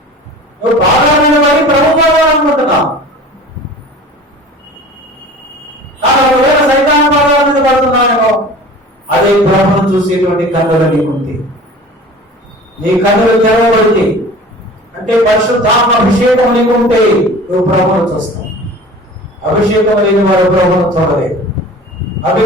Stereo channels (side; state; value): both; normal; correlation 0.41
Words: నువ్వు పాదాల మీద పడి ప్రభు పాదాలు అనుకుంటున్నావు, కానీ ఒకవేళ సైతాన్ పాదాల మీద పడుతున్నావేమో, అదే ప్రభువును చూసేటువంటి కన్నులు నీకుంది. నీ కన్నులు తెరవబడితే అంటే పరిశుద్ధాత్మ అభిషేకం నీకు ఉంటే నువ్వు ప్రభువును చూస్తావు. అభిషేకం లేని వారు ప్రభువును చూడలేదు.